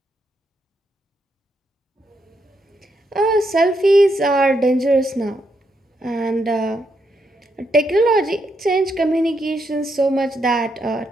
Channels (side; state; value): both; normal; correlation 0.79